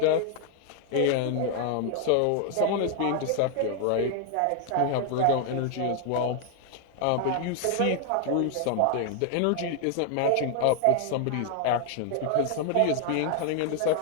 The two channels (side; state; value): both; different; correlation 0.00